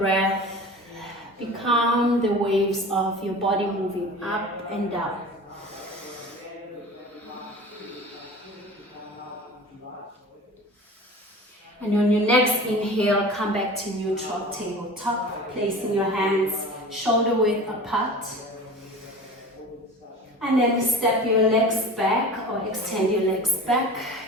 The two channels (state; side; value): normal; both; correlation 0.37